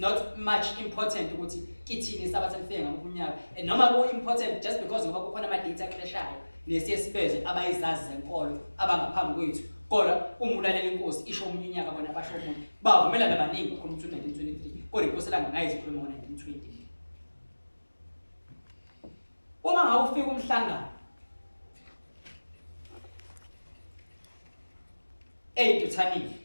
much important ukuthi kithini sabatha lifike ngomnyaka noma ku important just because ngoba kukhona ama data clashayo nesiyesibeze abayizazi zenkolo abangaphambi kwethu. Kodwa umulalela inkosi isho omunye unyaka bona basho omunye bavumelana abaningi ukukhuluma ukuthi 1923 kodwa inkosi ilanga ngayizikhuluma ngo1920. Uma ngabe ufika umhlangano eDuthani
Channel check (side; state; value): both; inverted; correlation -1.00